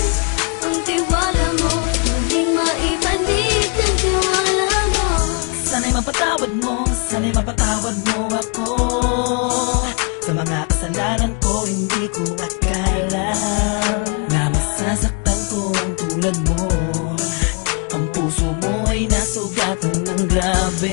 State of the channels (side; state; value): right; quieter; 36.9 dB